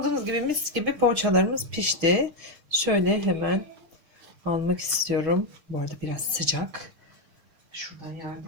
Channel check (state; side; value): late; left; 6.6 ms